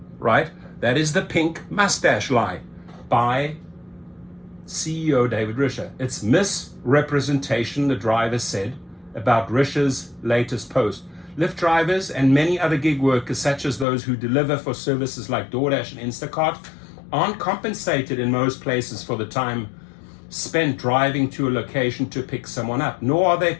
right? That is the pink mustache lie by CEO David Risher. It's misrepresentation, the driver said, about Risher's latest post. Lyft drivers and many other gig workers, such as those who deliver for services like DoorDash and Instacart, aren't compensated in most places for the time spent driving to a location to pick someone up, nor are they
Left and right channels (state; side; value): drops out; right; at 13.9 s